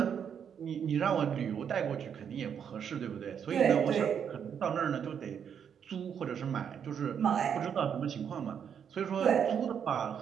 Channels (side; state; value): left; quieter; 7.9 dB